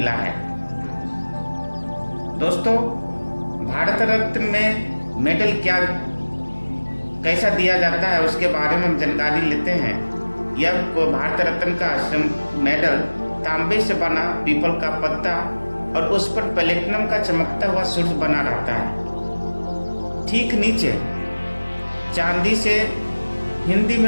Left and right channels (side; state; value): both; inverted; correlation -1.00